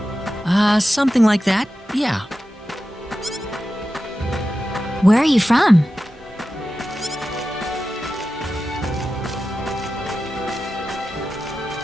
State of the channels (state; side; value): normal; both; correlation 0.93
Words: Something like that, yeah. Where are you from?